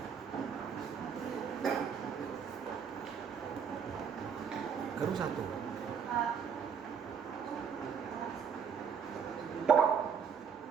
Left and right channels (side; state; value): left; quieter; 6.9 dB